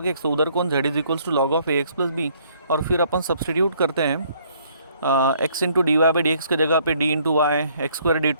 X, तो उधर कौन, Z is equals to log of A X plus B. और फिर अपन सब्सटीट्यूट करते हैं X into D Y by D X की जगह पे D into Y, X square D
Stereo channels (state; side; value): inverted; both; correlation -0.64